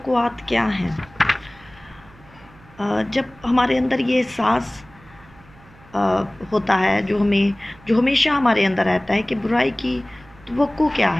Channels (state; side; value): noise; right; hum, 25 dB below the sound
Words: क्या हैं? जब हमारे अंदर ये एहसास होता है जो हमेशा हमारे अंदर रहता है कि बुराई की तवक्को क्या